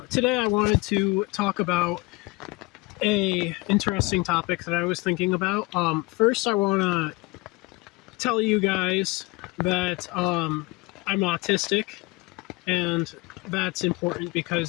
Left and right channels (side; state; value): right; quieter; 23.7 dB